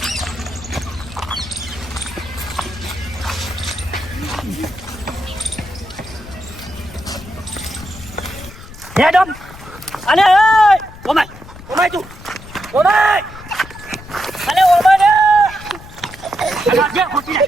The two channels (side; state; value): left; noise; rumble, 17 dB below the sound